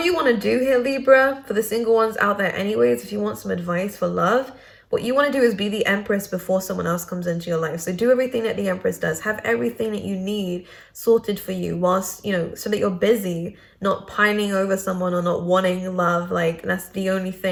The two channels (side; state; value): both; identical; correlation 1.00